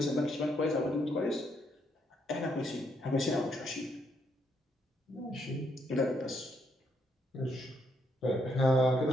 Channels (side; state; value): both; normal; correlation 0.75